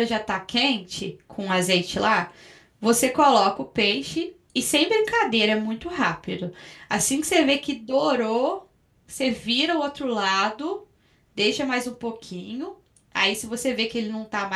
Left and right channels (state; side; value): identical; both; correlation 1.00